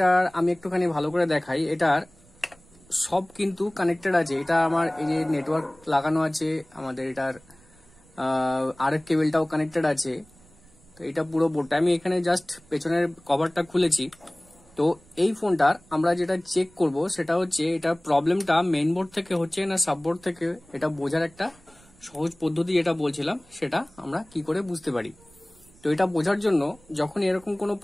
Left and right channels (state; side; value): noise; right; rumble, 28 dB below the sound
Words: আমি একটুখানি ভালো করে দেখাই। এটার সব কিন্তু কানেক্টেড আছে। এটা আমার এই যে নেটওয়ার্ক লাগানো আছে, আমাদের এটার আরএফ কেবলটাও কানেক্টেড আছে। তো এটা পুরো বোর্ডটা আমি এখানে জাস্ট পেছনের কভারটা খুলেছি। তো এই ফোনটার আমরা যেটা চেক করব সেটা হচ্ছে এটা প্রবলেমটা মেইন বোর্ড থেকে হচ্ছে না সাববোর্ড থেকে, এটা বোঝার একটা সহজ পদ্ধতি যেটা বলছিলাম সেটা আমরা কি করে বুঝতে পারি। তো এটা বোঝার জন্য যখন এরকম কোনো